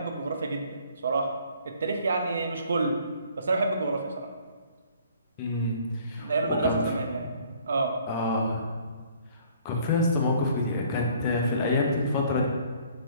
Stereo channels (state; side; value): inverted; both; correlation -0.58